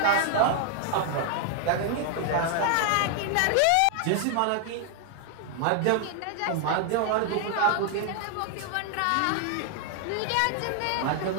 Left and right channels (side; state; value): both; different; correlation 0.00